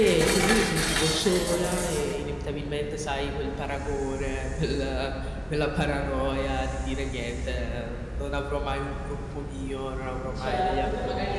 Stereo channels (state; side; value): identical; both; correlation 1.00